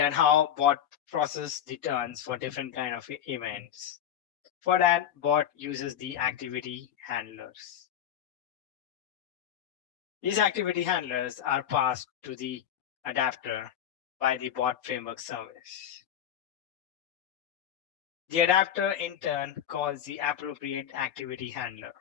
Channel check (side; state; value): right; quieter; 10.0 dB